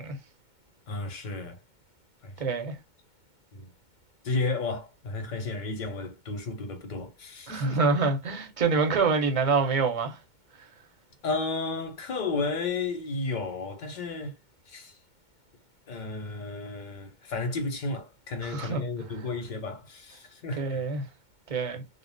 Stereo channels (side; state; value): right; late; 2.2 ms